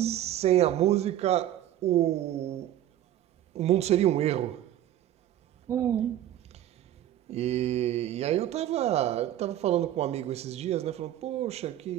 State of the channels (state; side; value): quieter; left; 12.3 dB